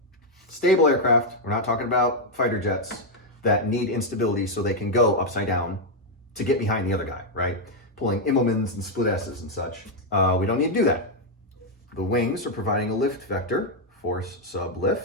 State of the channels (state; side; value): normal; both; correlation 0.00